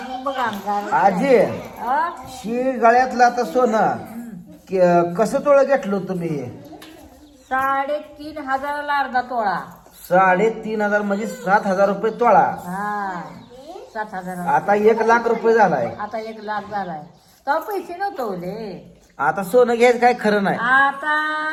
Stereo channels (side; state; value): both; identical; correlation 1.00